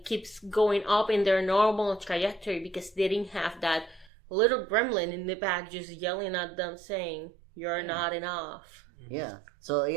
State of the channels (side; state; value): left; drops out; at 4.1 s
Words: keeps going up in their normal trajectory, because they didn't have that little gremlin in the back just yelling at them saying, you're not enough. Yeah. So,